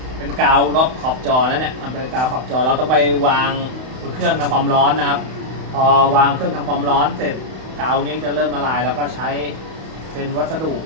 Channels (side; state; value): left; late; 31 ms